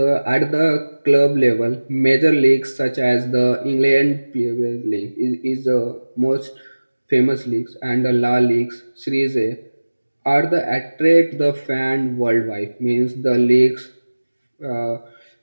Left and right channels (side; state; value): both; inverted; correlation -1.00